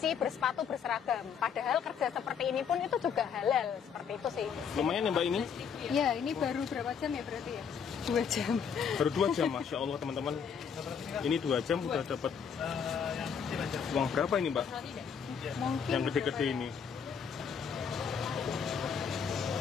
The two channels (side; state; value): right; quieter; 7.0 dB